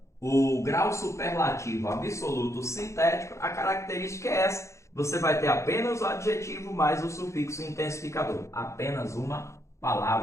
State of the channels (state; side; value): late; right; 0.14 ms